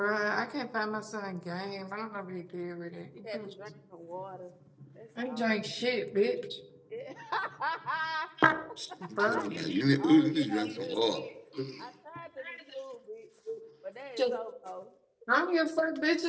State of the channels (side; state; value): both; identical; correlation 1.00